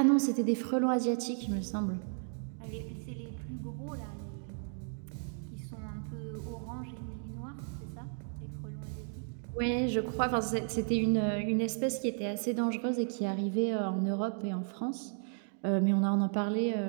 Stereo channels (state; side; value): silent; left; 55 dB below the other